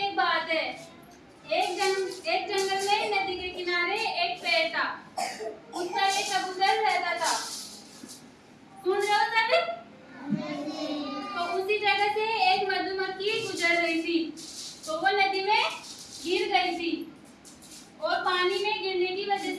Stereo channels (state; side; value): identical; both; correlation 1.00